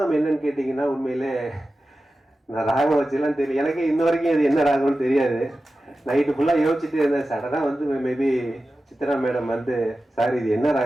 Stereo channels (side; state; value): both; normal; correlation 0.94